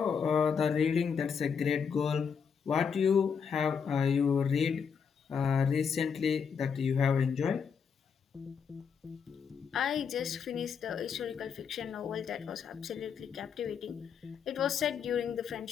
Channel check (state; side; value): quieter; right; 6.6 dB